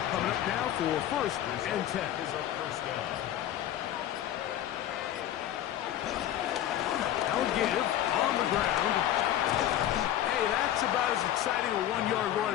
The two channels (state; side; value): quieter; right; 11.9 dB